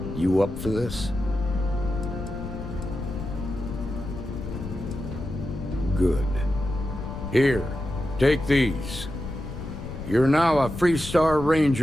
You up for this? Good. Here, take these. You're now a Freestar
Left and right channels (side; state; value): left; noise; rumble, 9 dB below the sound